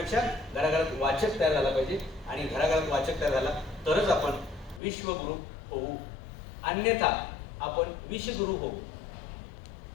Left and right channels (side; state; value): right; drops out; at 4.8 s